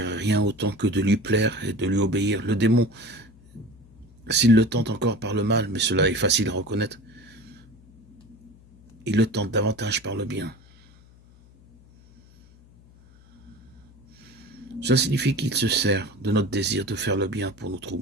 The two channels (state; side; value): noise; left; hum, 26 dB below the sound